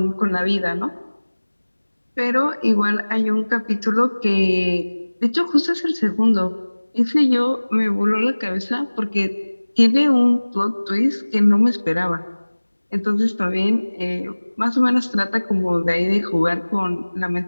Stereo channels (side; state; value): both; inverted; correlation -1.00